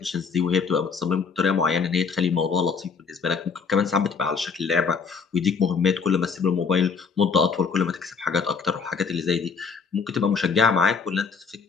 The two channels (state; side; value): quieter; right; 5.5 dB